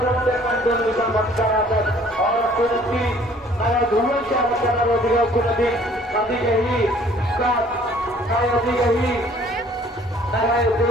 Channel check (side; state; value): both; normal; correlation 0.56